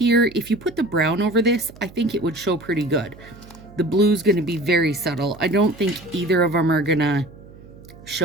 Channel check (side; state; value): right; noise; hum, 20 dB below the sound